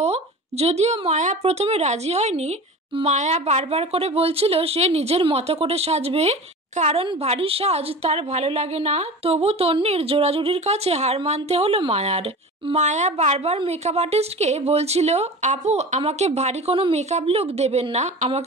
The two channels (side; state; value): both; normal; correlation 0.34